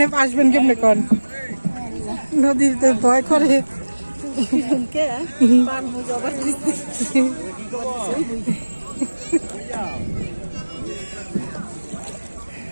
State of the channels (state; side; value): inverted; both; correlation -1.00